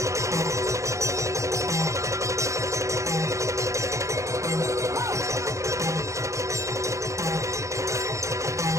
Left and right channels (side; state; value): left; late; 0.15 ms